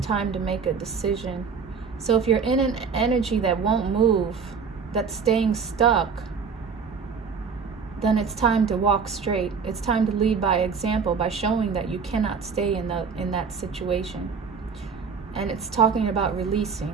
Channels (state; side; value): quieter; left; 5.8 dB